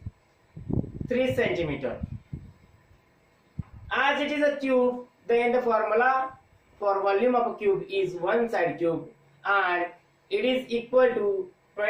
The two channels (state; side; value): identical; both; correlation 1.00